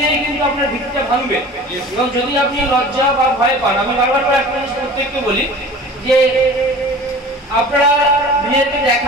ধীরে কিন্তু আপনার ভিত্তিটা ভাঙবে। এবং যদি আপনি লজ্জা বা ভয় পান, আমি বারবার করে একটা জিনিস প্রত্যেককে বলি যে আপনারা নিজেদেরকে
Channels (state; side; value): normal; both; correlation 0.41